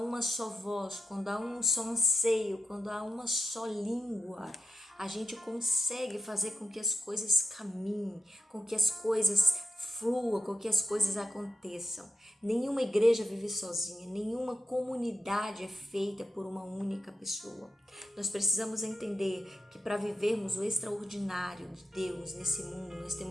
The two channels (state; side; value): normal; both; correlation 0.88